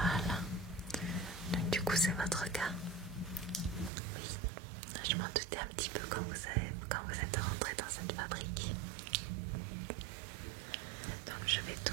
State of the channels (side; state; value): left; drops out; at 3.9 s